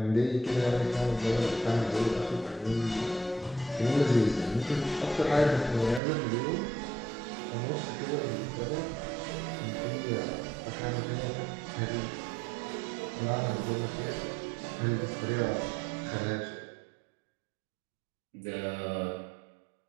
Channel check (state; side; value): drops out; left; at 6.0 s